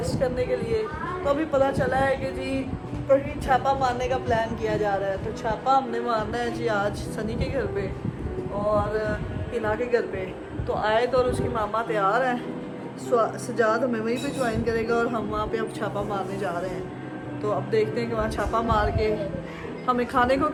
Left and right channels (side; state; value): both; identical; correlation 1.00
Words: करने के लिए। तो अभी पता चला है कि जी कहीं छापा मारने का प्लान किया जा रहा है। तो छापा हमने मारना है जी आज सनी के घर पे और हिना के घर पे। तो आयत और उसकी मामा तैयार हैं, सजाद हमें वहीं पे ज्वाइन करेगा और हम वहाँ पे अब छापा मारने जा रहे हैं। तो अब देखते हैं कि वहाँ छापा मार के हमें खाने को